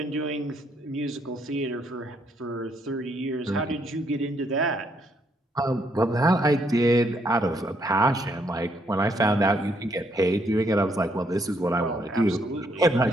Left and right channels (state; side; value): normal; both; correlation 0.72